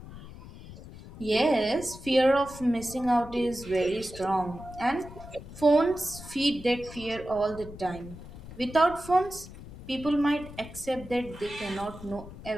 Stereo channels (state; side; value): noise; left; rumble, 15 dB below the sound